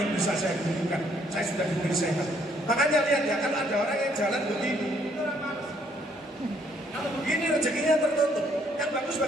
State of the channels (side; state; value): both; normal; correlation 0.67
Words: bisa saya berikan. Saya sudah diberi sehat. Makanya lihat ya, kalau ada orang yang jalan begini, kalau begini rezekinya tertutup. Yang bagus